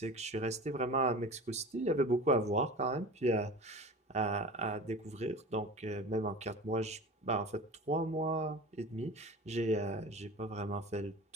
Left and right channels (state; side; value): normal; both; correlation 0.35